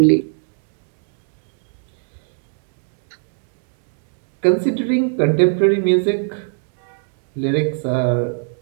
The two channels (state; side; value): silent; left; 68 dB below the other